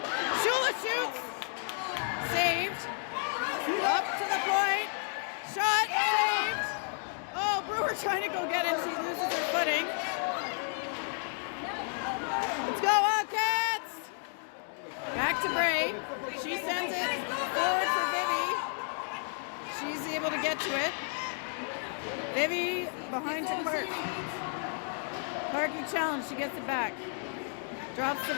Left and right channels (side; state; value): right; silent; 56 dB below the other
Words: Shula shoots. Saved. Up to the point. Shot. Saved. Oh, Brewer trying to go get it. She loses her footing. Let's go, Wildcats! Back to Bray. She sends it forward for Vivi. She's able to get to it. Vivi behind to Clark. Clarky challenge. She gets it back. Drops to